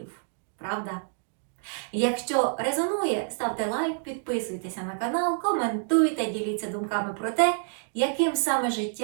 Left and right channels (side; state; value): left; silent; digital silence